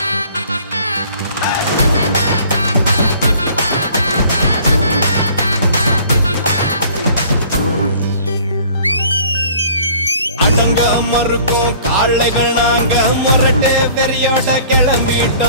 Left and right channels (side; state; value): both; inverted; correlation -0.52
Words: Adanga marukkum kaaligal naanga murate veriyoda